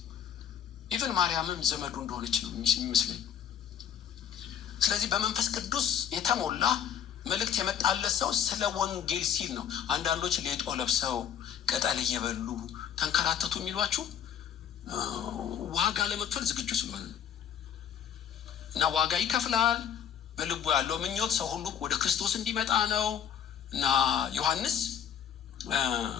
ኢቨን ማርያምም ዘመዱ እንደሆነች ነው የሚመስለኝ። ስለዚህ በመንፈስ ቅዱስ የተሞላ መልእክት የመጣለት ሰው ስለ ወንጌል ሲል ነው። አንዳንዶች ሌጦ ለብሰው ቅጠል እየበሉ ተንከራተቱ የሚሏችሁ ዋጋ ለመክፈል ዝግጁ ስለሆነ እና ዋጋ ይከፍላል። በልቡ ያለው ምኞት ሰው ሁሉ ወደ ክርስቶስ እንዲመጣ ነው። እና ዮሐንስ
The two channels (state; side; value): quieter; right; 8.9 dB